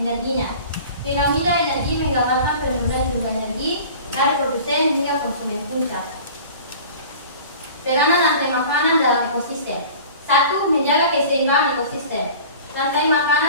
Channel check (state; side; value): inverted; both; correlation -0.42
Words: Piramida energi menggambarkan penurunan jumlah energi dari produsen hingga konsumen puncak. Peranan rantai makanan dalam ekosistem. 1. Menjaga keseimbangan ekosistem. Rantai